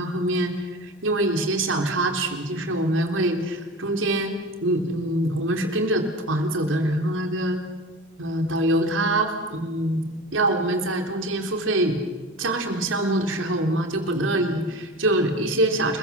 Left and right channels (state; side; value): normal; both; correlation 0.32